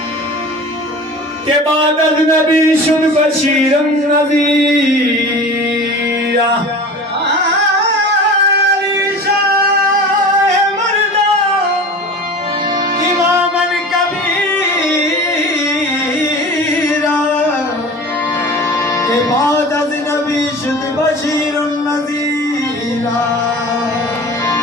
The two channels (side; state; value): both; normal; correlation 0.37